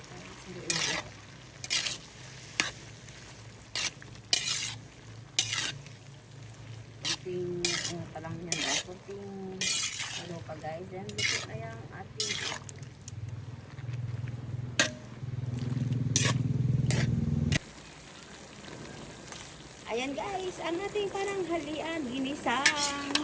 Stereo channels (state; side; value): identical; both; correlation 1.00